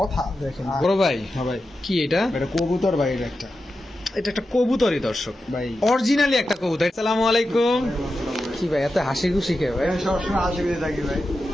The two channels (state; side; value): normal; both; correlation 0.91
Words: কথা? দেখেন বড় ভাই। হ্যাঁ ভাই, কি এটা? এটা কবুতর ভাই, এটা একটা কবুতরই দর্শক ভাই, অরিজিনালি একটা কবুতর। আসসালামু আলাইকুম। কি ভাই এত হাসি খুশি কে ভাই? সবসময় হাসি খুশি থাকি ভাই,